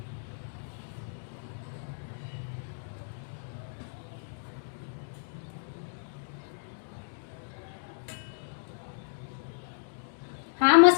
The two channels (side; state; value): right; silent; digital silence